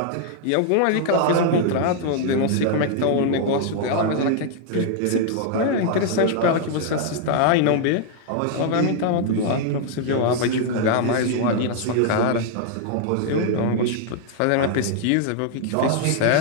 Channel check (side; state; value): both; different; correlation -0.01